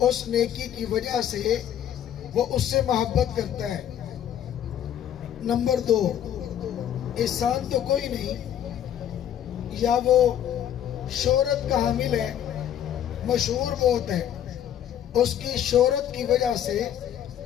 نیکی کی وجہ سے وہ اس سے محبت کرتا ہے۔ نمبر 2، احسان تو کوئی نہیں، یا وہ شہرت کا حامل ہے، مشہور بہت ہے، اس کی شہرت کی وجہ سے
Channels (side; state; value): right; quieter; 10.4 dB